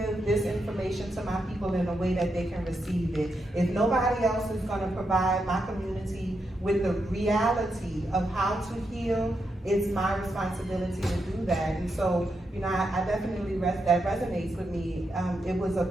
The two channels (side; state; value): both; normal; correlation 0.84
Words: this information to my people in a way that they can receive it. If nobody else is going to provide my community with the reality of how to heal, it's my responsibility to do that. And so, I definitely, that resonates with me. It was a